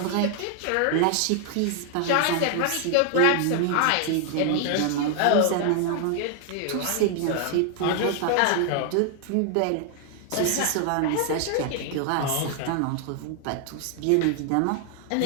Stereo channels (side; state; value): both; different; correlation 0.00